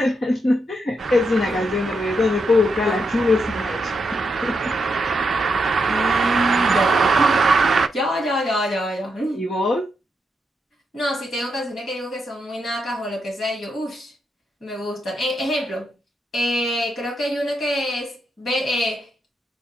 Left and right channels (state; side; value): normal; both; correlation 0.82